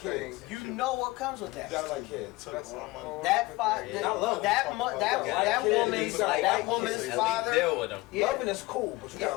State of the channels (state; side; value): quieter; right; 21.4 dB